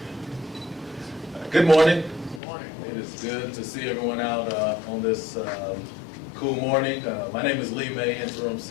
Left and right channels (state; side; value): drops out; right; at 2.4 s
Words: Good morning. Good morning. It is good to see everyone out on this cool morning. My name is Lee May, Interim